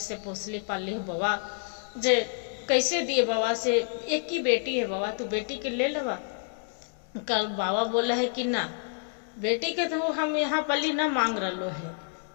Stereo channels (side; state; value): right; silent; 59 dB below the other